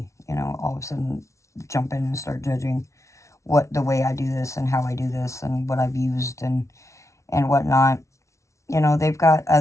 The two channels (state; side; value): late; right; 0.14 ms